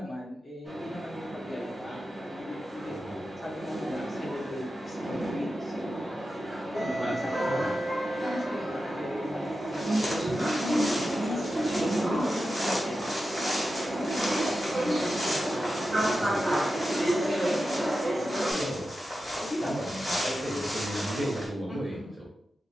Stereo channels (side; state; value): both; normal; correlation 0.91